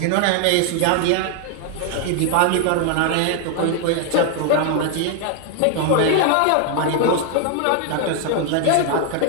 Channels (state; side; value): different; both; correlation 0.00